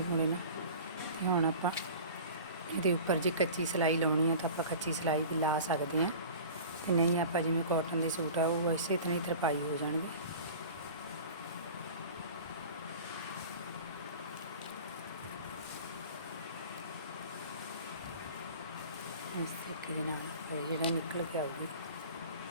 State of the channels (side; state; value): both; inverted; correlation -0.39